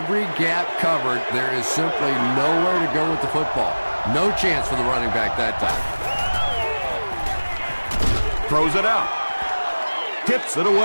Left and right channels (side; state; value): both; inverted; correlation -1.00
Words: gap covered. There is simply nowhere to go with the football. No chance for the running back that time. Throws it out. Tips it